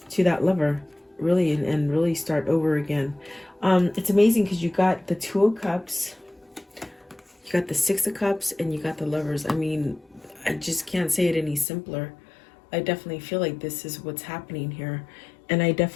to that lover, really, and really start over again. It's amazing because you got the Two of Cups, you got the Six of Cups, and you got the Lovers. I mean, I just can't say it any simpler. I definitely feel like this is what's happening here. And I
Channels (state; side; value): drops out; right; at 11.7 s